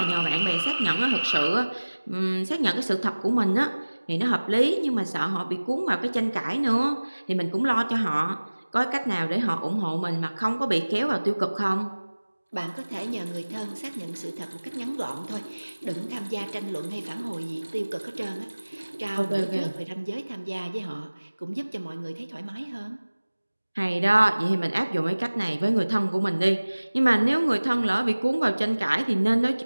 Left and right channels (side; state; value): both; inverted; correlation -1.00